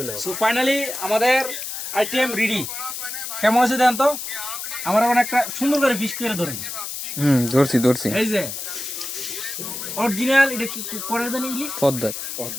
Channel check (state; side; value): noise; left; hiss, 6 dB below the sound